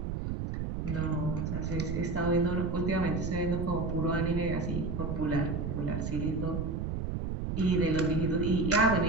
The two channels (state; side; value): noise; right; rumble, 2 dB below the sound